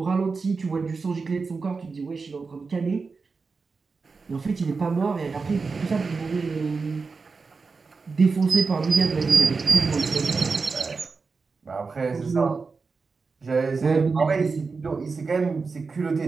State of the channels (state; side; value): quieter; left; 4.5 dB